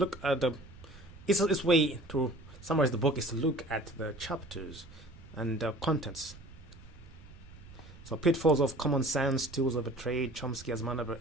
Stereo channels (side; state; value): right; noise; rumble, 19 dB below the sound